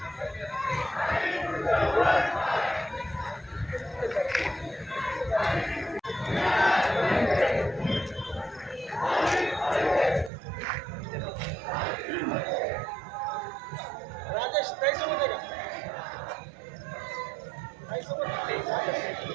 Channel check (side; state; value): left; drops out; at 10.3 s